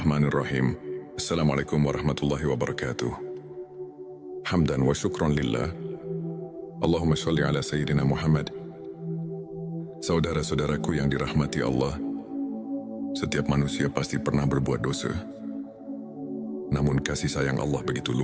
Assalamualaikum warahmatullahi wabarakatuh. Hamdan wa syukran lillah. Allahumma sholli ala Sayyidina Muhammad. Saudara-saudaraku yang dirahmati Allah, setiap manusia pasti pernah berbuat dosa. Namun kasih sayang Allah begitu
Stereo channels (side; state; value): both; identical; correlation 1.00